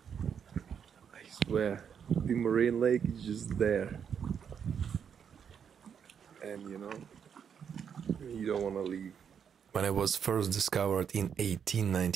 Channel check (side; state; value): left; quieter; 7.6 dB